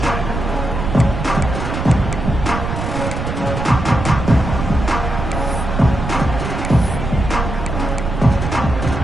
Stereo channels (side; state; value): right; noise; rumble, 4 dB below the sound